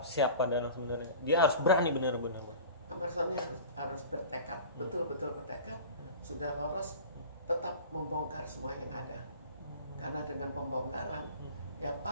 siapa dalam sebenarnya? Dia harus berani benar-benar. Ahmad Zoni harus bertekad, betul-betul bertekad. Sudah lolos, tetap membongkar semua yang ada. Karena dengan pembongkaran, ya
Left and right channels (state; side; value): inverted; both; correlation -0.39